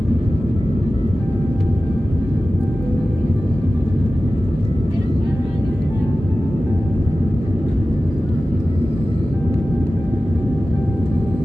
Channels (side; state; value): both; normal; correlation 0.95